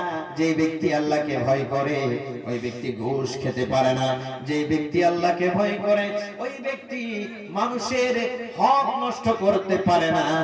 যে ব্যক্তি আল্লাহকে ভয় করে ওই ব্যক্তি ঘুষ খেতে পারে না। যে ব্যক্তি আল্লাহকে ভয় করে ওই ব্যক্তি মানুষের হক নষ্ট করতে পারে না।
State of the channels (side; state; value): both; identical; correlation 1.00